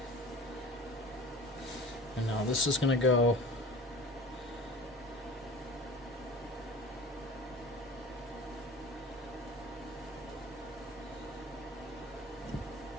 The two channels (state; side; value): normal; both; correlation 0.39